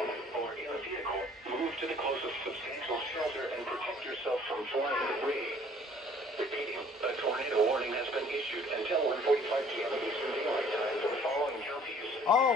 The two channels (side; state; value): both; normal; correlation 0.56